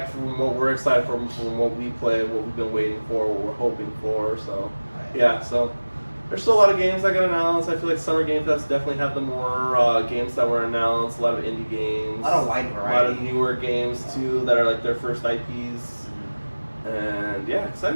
from what we're excited for, from what we play, what we've been waiting for, what we're hoping for. So yeah, so there's still a lot of games that got announced. I feel like Summer Game Fest definitely have the more games that were announced. A lot of indie games, a lot of wide variety, a lot of newer games too that are like their first IPs. And yeah,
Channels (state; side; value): inverted; both; correlation -1.00